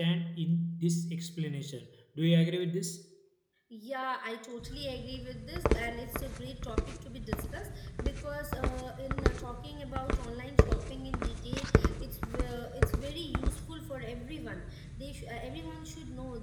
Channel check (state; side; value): identical; both; correlation 1.00